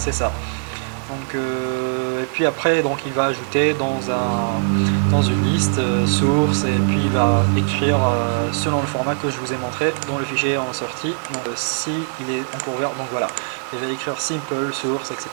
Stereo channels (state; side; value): silent; left; digital silence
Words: ça. Donc, et puis après donc il va ajouter dans une liste source, et puis il va écrire selon le format que je vous ai montré dont le fichier est en sortie. Donc si il est encore ouvert, donc voilà, il va écrire simple source,